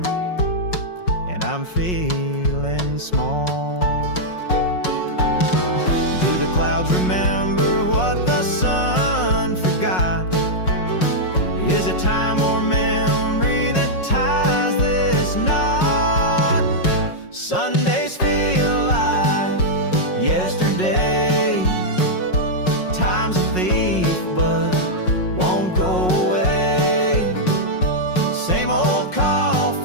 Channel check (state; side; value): late; right; 5.5 ms